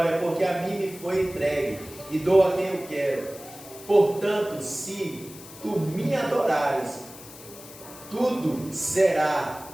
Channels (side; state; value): left; noise; hiss, 17 dB below the sound